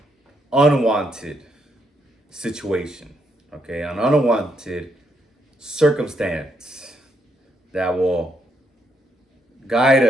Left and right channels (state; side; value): normal; both; correlation 0.76